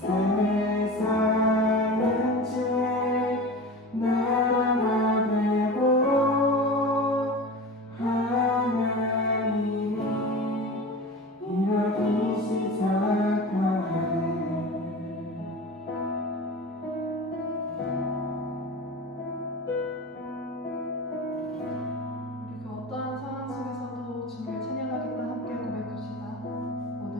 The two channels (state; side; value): normal; both; correlation 0.32